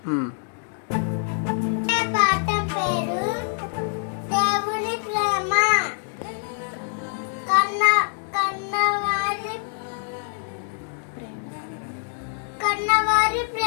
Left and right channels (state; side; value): silent; right; digital silence